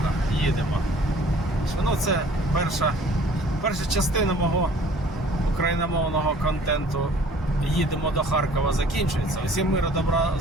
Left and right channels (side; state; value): both; normal; correlation 0.52